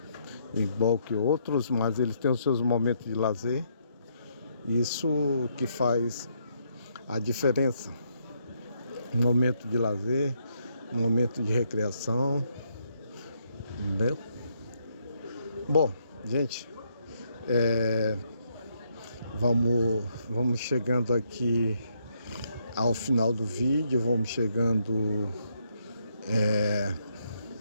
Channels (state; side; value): inverted; both; correlation -0.75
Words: Igual que outros, mas eles têm os seus momentos de lazer. Isso que faz a diferença. Um momento de lazer, um momento de recreação, entendeu? Bom, gente, vamos chegando aqui ao final do vídeo, vamos chegando